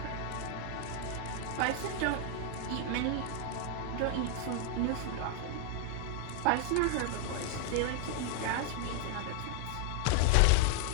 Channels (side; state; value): both; different; correlation 0.00